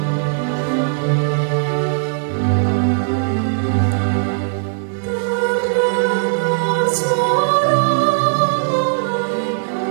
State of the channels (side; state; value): left; silent; digital silence